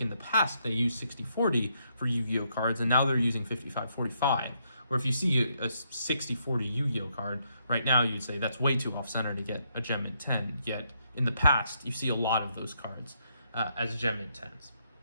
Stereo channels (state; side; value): inverted; both; correlation -0.76